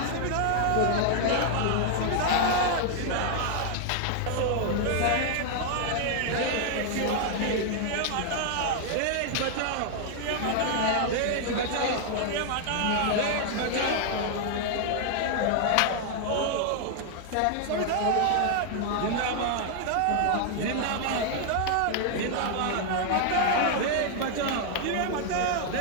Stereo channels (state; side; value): different; both; correlation 0.00